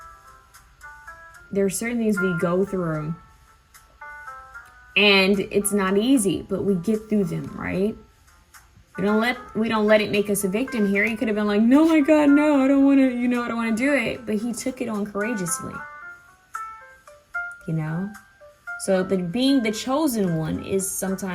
there are certain things we go through and it's not easy, but we get through them, right? We don't let it make us a victim here. He could have been like, no, my God, no, I don't want to, I don't want to do it. But he took it on courageously, So being the chosen one is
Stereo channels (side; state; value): both; identical; correlation 1.00